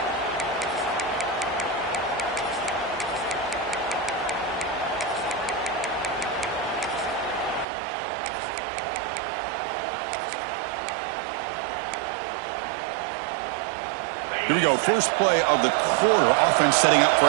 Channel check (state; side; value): drops out; left; at 7.7 s